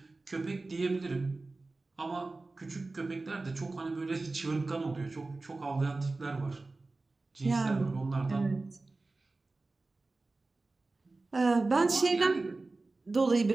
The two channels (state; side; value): quieter; left; 3.4 dB